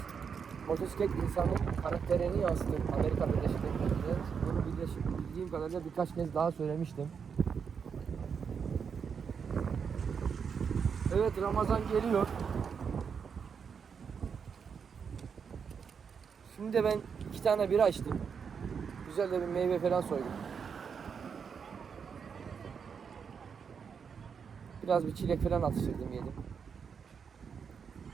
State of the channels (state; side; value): quieter; left; 6.5 dB